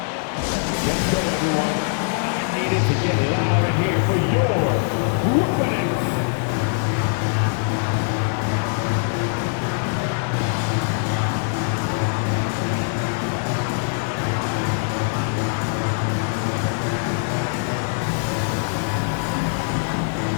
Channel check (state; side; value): silent; right; 61 dB below the other